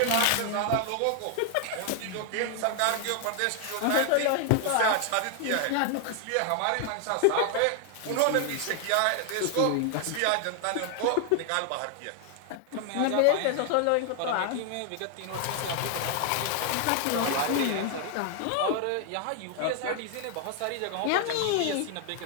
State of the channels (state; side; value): different; both; correlation 0.00